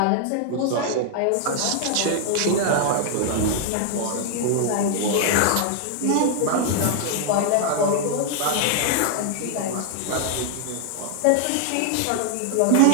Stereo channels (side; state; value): both; different; correlation 0.00